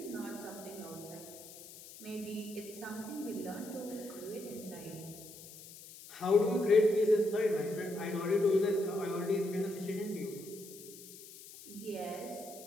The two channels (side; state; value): left; noise; hiss, 16 dB below the sound